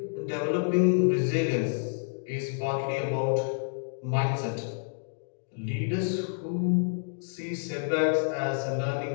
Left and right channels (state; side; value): silent; right; digital silence